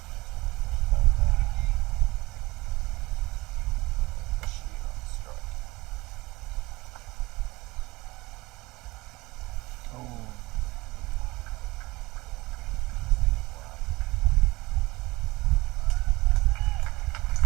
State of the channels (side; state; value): left; quieter; 21.0 dB